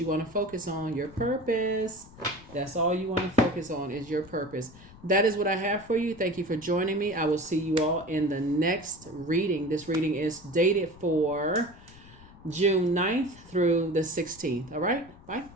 want to focus on. Your purpose. That's all you want to focus on is your purpose. That is what I have for you. Thank you for joining me. I will see you all in the next reading. This reading is dated for June 9th through the 16th. All right. Bye.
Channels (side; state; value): left; noise; rumble, 21 dB below the sound